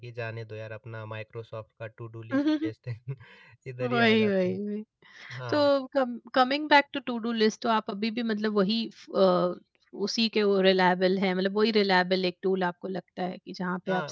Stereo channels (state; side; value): identical; both; correlation 1.00